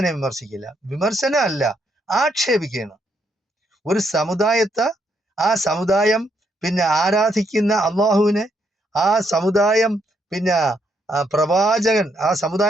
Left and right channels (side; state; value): both; normal; correlation 0.75